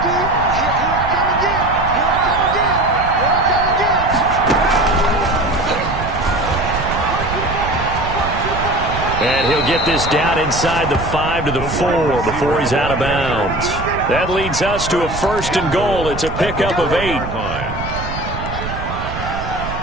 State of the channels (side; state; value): right; noise; rumble, 8 dB below the sound